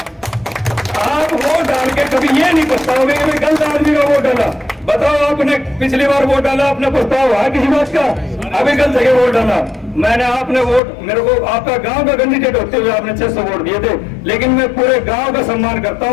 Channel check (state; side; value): drops out; right; at 10.8 s